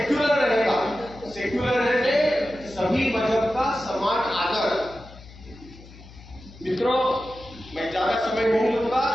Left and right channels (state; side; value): noise; left; hum, 20 dB below the sound